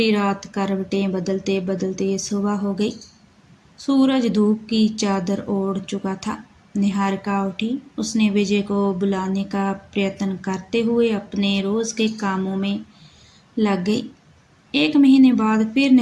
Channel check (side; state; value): both; identical; correlation 1.00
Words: रात करवटें बदलते बदलते सुबह हो गई। सूरज धूप की चादर ओढ़ चुका था। निहारिका उठी। उसने विजय को बुलाने का प्रयत्न करते हुए अपने रोज के कामों में लग गई। 1 महीने बाद फिर